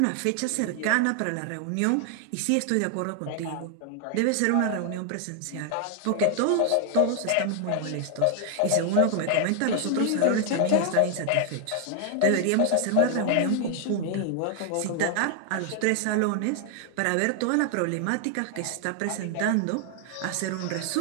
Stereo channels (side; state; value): both; different; correlation 0.00